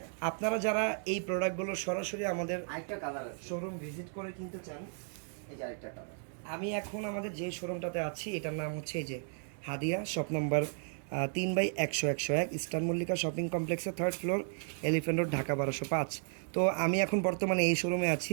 আপনারা যারা এই প্রোডাক্টগুলো সরাসরি আমাদের আরেকটা কালার আছে, শোরুম ভিজিট করে কিনতে চান, এই যে আরেকটা কালার। আমি এখন আমাদের যে শোরুমটাতে আছি এটার নাম হচ্ছে এই যে হাদিয়া, shop number 3/100-101, eastern Mallika shopping কমপ্লেক্সের 3rd floor, elephant road, Dhaka 1205। তো আমি এখন বর্তমানে এই শোরুমে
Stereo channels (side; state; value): left; silent; 55 dB below the other